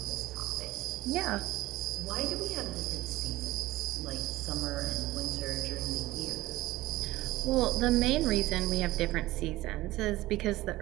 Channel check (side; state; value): left; quieter; 17.5 dB